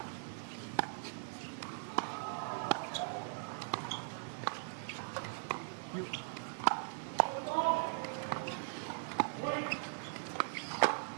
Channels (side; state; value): left; silent; digital silence